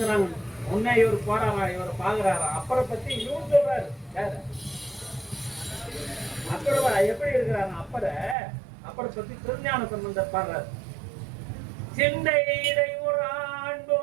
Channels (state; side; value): drops out; left; at 8.3 s